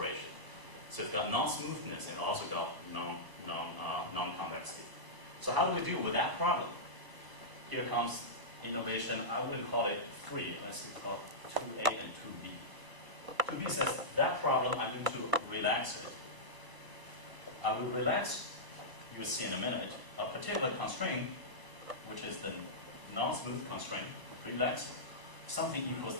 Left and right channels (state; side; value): late; left; 1.0 ms